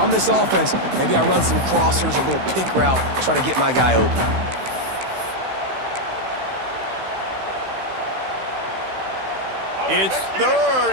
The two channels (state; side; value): late; left; 16 ms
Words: this offense, maybe I run some crossers, a little pick route, try to get my guy open. It's